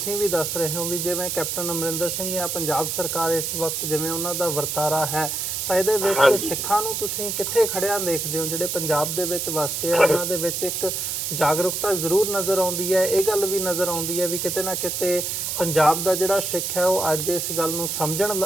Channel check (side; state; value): right; noise; hiss, 2 dB below the sound